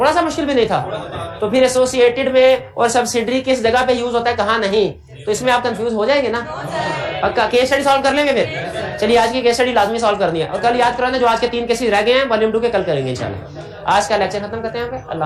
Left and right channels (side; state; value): both; identical; correlation 1.00